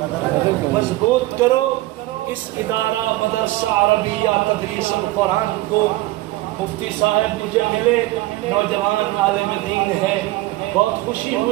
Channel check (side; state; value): left; quieter; 18.3 dB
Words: مضبوط کرو اس ادارہ مدرسہ عربیہ تدریس القرآن کو مفتی صاحب مجھے ملے نوجوان عالم دین ہے بہت خوشی